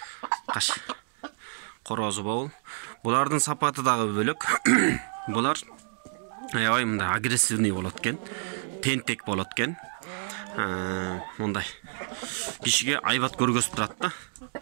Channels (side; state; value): left; silent; digital silence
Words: Каш. Корозу бул. Булардын сапаты дагы бөлөк. Булар аябай мындай агрессивный болот экен. Тентек болот экен. Мындай кишиге айбат көргөзүп турат да.